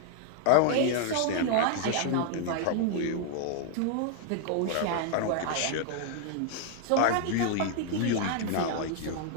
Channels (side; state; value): both; different; correlation 0.00